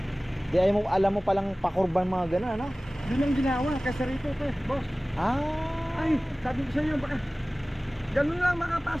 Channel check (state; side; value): normal; both; correlation 0.98